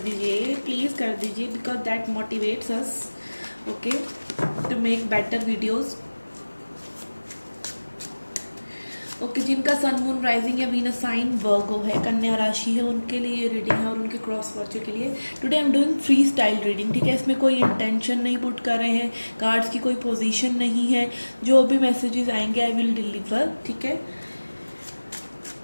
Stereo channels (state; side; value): inverted; both; correlation -1.00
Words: दीजिए, प्लीज़ कर दीजिए, because that motivates us okay to make better videos. Okay जिनका सन मून राइजिंग या वीनस साइन वर्गो है, कन्या राशि है, उनके लिए ये रीडिंग है और उनके क्रॉस वर्चू के लिए। Today I am doing free style reading. ठीक है, इसमें कोई इंटेंशन नहीं पुट कर रहे हैं, कार्ड्स की कोई पोजीशन नहीं है। जो भी मैसेजेस आएंगे आई विल डिलीवर। ठीक है,